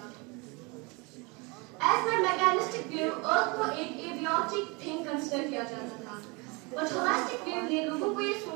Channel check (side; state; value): left; quieter; 28.4 dB